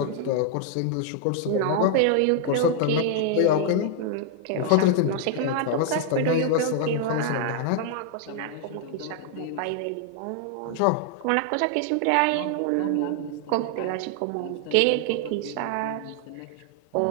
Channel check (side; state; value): both; different; correlation 0.00